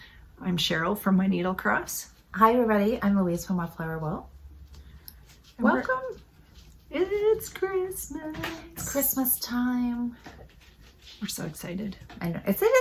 I'm Cheryl from My Needle Cross. Hi, everybody. I'm Louise from Wildflower Will. Welcome. It's Christmas. It's Christmas time. We're so excited. I know. It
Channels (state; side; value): identical; both; correlation 1.00